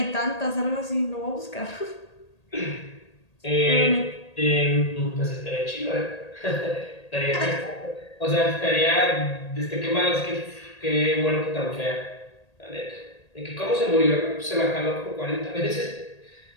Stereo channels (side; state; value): right; late; 1.8 ms